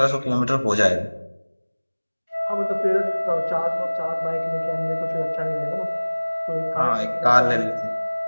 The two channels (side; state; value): both; inverted; correlation -1.00